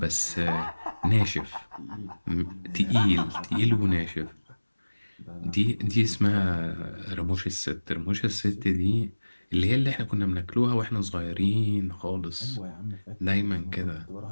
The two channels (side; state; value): both; inverted; correlation -1.00